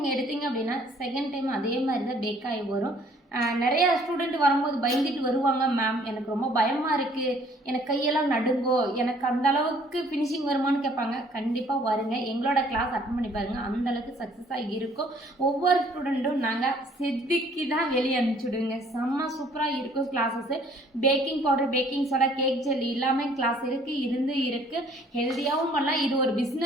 எடுத்தீங்க அப்படின்னா செகண்ட் டைம் அதே மாதிரி தான் பேக் ஆகி வரும். நிறையா ஸ்டூடெண்ட் வரும்போது பயந்துட்டு வருவாங்க, மேம் எனக்கு ரொம்ப பயமாக இருக்குது, எனக்கு கையெல்லாம் நடுங்கோ, எனக்கு அந்த அளவுக்கு ஃபினிஷிங் வருமானு கேட்பாங்க. கண்டிப்பாக வருங்க, எங்களோட கிளாஸ் அட்டன் பண்ணி பாருங்கள், அந்தளவுக்கு சக்ஸஸாக இருக்கும். ஒவ்வொரு ஸ்டூடெண்ட்டும் நாங்கள் செதுக்கி தான் வெளியே அனுப்பிச்சுடுவோங்க. செம்ம சூப்பராக இருக்கும் classes. Baking powder, baking soda, cake gel எல்லாமே கிளாஸ் இருக்குது. ஹெல்த்தியாகவும் பண்ணலாம். இது ஒரு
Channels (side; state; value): both; normal; correlation 0.58